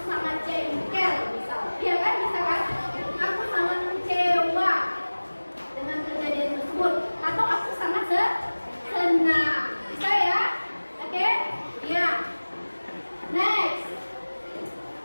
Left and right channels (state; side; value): inverted; both; correlation -1.00